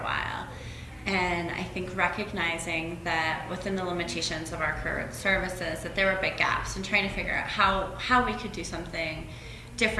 while. And I think recognizing that within the limitations of our current services, that there were big gaps, and trying to figure out how we could do something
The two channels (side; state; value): both; identical; correlation 1.00